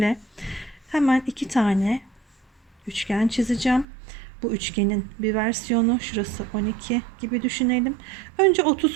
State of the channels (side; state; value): left; drops out; at 3.9 s